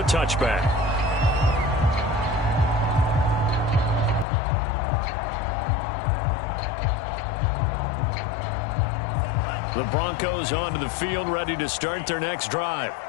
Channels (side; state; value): right; drops out; at 4.2 s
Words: touchback. The Broncos onto the field, ready to start their next drive.